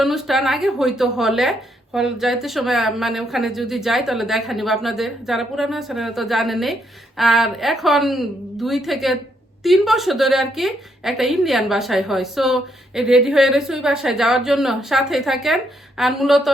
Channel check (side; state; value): both; normal; correlation 0.75